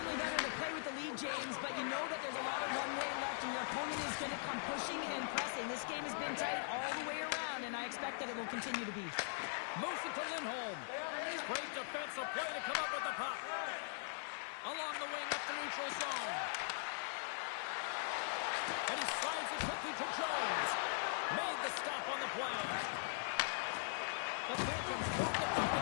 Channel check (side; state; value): right; silent; digital silence